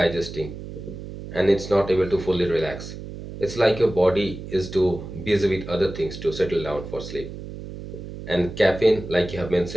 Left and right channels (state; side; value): noise; right; hum, 11 dB below the sound